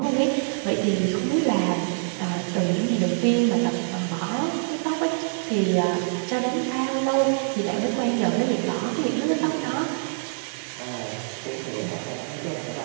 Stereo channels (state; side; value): silent; left; digital silence